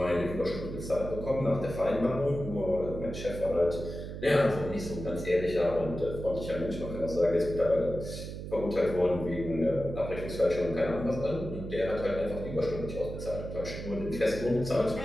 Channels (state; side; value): noise; right; hum, 8 dB below the sound